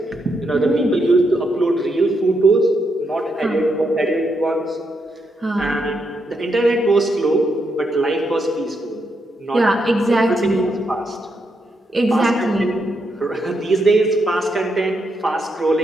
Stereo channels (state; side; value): normal; both; correlation 0.80